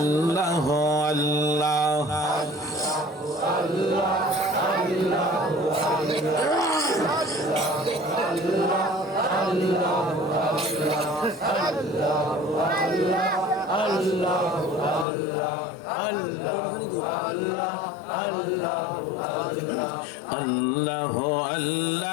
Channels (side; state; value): right; drops out; at 15.1 s